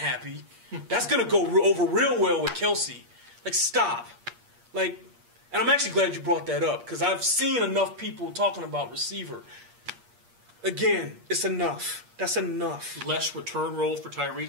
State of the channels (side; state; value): left; late; 8.5 ms